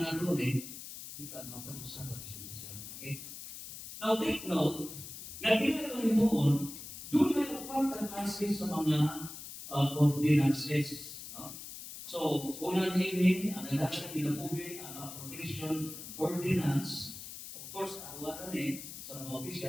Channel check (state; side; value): noise; left; hiss, 11 dB below the sound